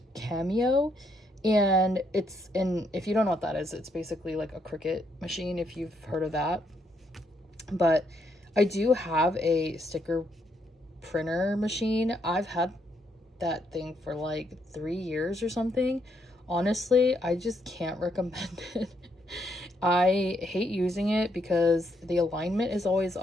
Cameo, and it's if you don't know what that is, it's basically like a Cricut machine, if you've heard of that. But I do have a sticker printer machine. I've had that thing for like 3 years or something. Honestly, I just can't recommend it. I hate using it because the alignment is always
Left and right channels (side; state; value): both; normal; correlation 0.75